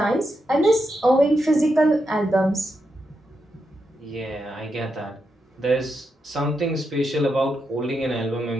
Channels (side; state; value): both; normal; correlation 0.84